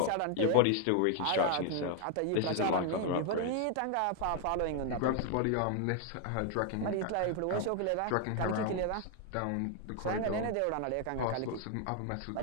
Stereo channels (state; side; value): different; both; correlation 0.00